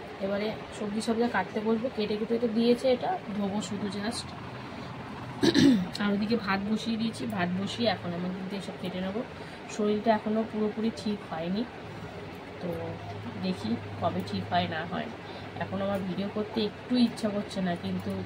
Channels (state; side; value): identical; both; correlation 1.00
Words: এবারে সবজি কাটতে বলবো। কেটে কেটে তো দিয়েছে, এটা ধোবো শুধু জাস্ট। আর ওদিকে ভাত বসিয়ে দিয়েছি, ভাত বসিয়ে এখন আমি কিন্তু এসব কেটে নেবো। শরীরটা এখনও পুরোপুরি ঠিক হয়নি, তো দেখি কবে ঠিক হয় না হয়। এখন আমার ভিডিও করতে একটু ইচ্ছা করছে না, কিন্তু